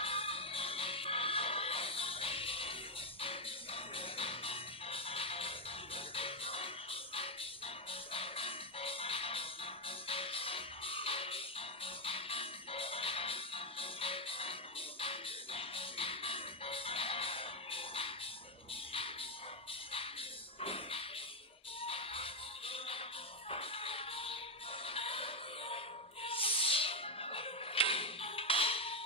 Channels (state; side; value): normal; both; correlation 0.03